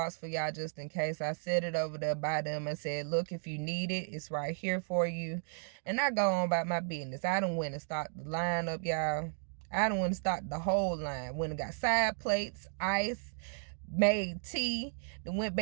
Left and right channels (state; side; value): silent; left; digital silence